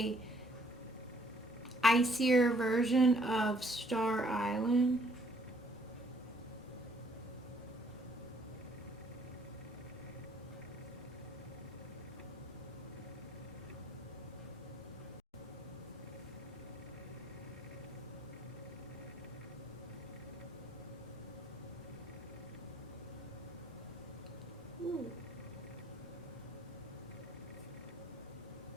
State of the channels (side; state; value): both; normal; correlation 0.63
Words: icier version of Star Island. Ooh.